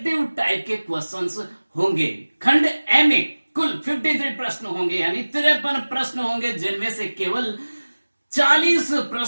टाइप के क्वेश्चंस होंगे। खंड ए में कुल 53 प्रश्न होंगे, यानी 53 प्रश्न होंगे, जिनमें से केवल 40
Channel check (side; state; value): both; inverted; correlation -1.00